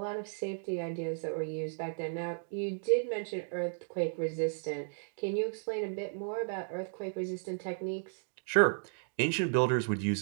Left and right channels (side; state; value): left; silent; digital silence